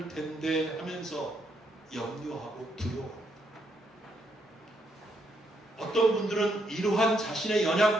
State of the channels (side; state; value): both; normal; correlation 0.76